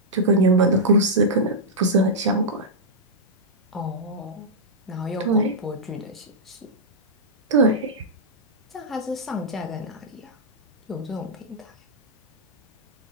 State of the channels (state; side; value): normal; both; correlation -0.09